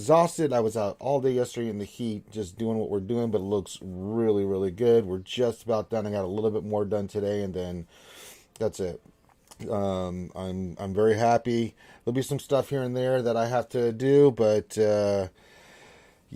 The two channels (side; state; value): both; identical; correlation 1.00